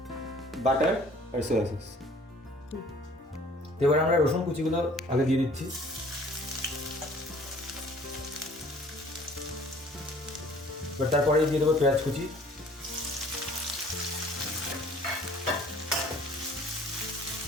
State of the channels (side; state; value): both; normal; correlation 0.54